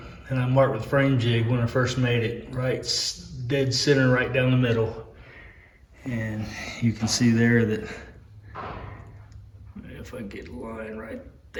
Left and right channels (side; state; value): both; identical; correlation 1.00